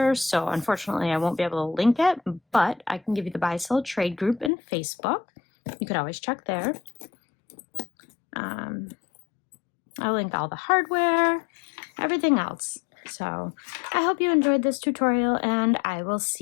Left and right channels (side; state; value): right; drops out; at 4.5 s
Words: so unfortunately I won't be able to link it, but I can give you the Buy Sell Trade group in Facebook. You could always check there. I'll link all the hardware, everything else. So I hope you enjoyed this tutorial and I will